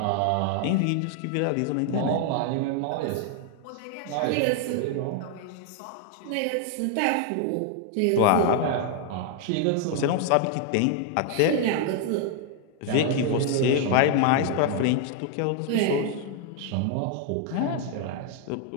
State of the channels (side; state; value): both; different; correlation 0.00